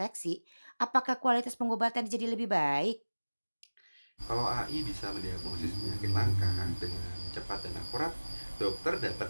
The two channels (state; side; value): inverted; both; correlation -1.00